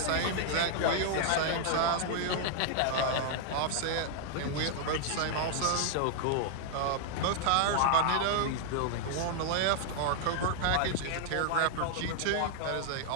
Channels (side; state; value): both; different; correlation 0.00